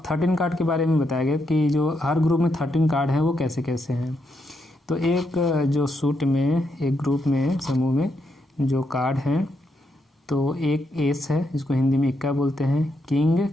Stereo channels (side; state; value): both; normal; correlation 0.80